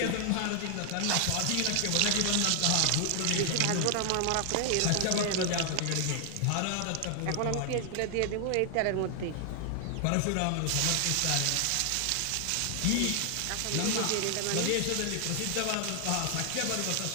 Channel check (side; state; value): both; different; correlation 0.00